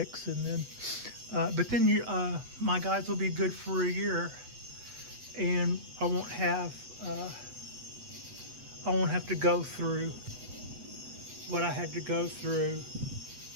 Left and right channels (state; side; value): late; left; 8.1 ms